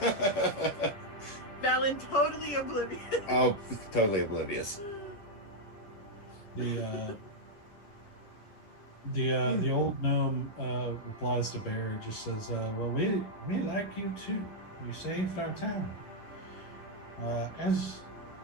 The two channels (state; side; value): late; right; 10 ms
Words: Valen, totally oblivious. Oh, totally oblivious. The old gnome replies to Bear, just says, well, we like you too. You saved our town. As